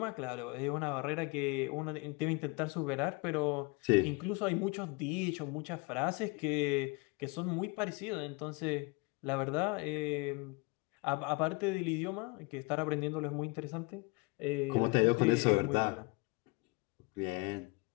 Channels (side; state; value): right; quieter; 28.4 dB